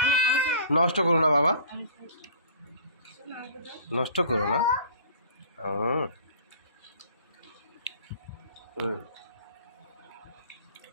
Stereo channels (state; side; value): inverted; both; correlation -0.46